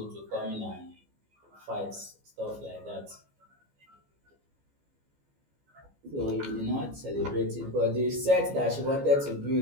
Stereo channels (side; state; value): left; late; 14 ms